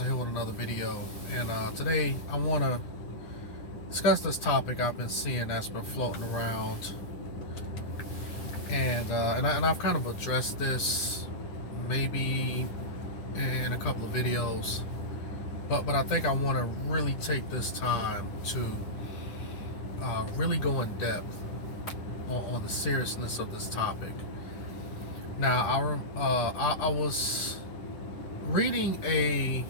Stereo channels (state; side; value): late; right; 10 ms